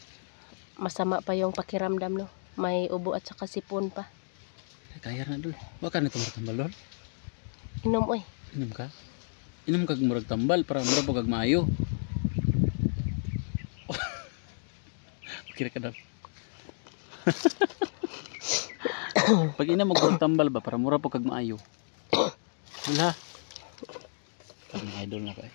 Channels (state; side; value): silent; right; digital silence